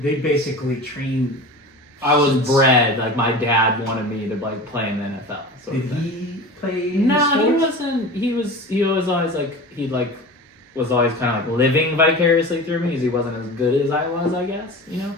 basically train. I was bred like my dad wanted me to like play in the NFL. So Did he play? No, he sports? wasn't. He was always like he like was always kind of like living vicariously through me because he wasn't as good as I was, I guess, you know.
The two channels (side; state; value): both; normal; correlation 0.33